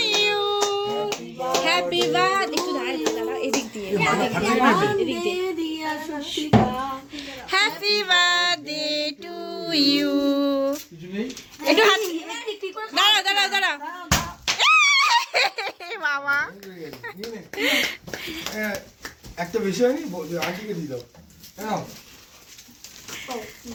you, happy birthday. একটু দাঁড়াও এদিক দিয়ে, এদিক দিয়ে। Happy birthday to you. একটু হাত দাঁড়াও দাঁড়াও দাঁড়াও। বাবা একটা বেশি হয়নি আন্টিকে দিয়ে দাও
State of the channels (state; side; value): identical; both; correlation 1.00